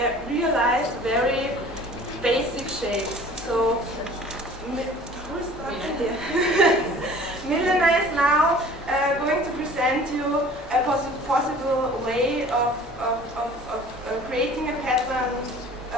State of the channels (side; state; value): both; normal; correlation 0.47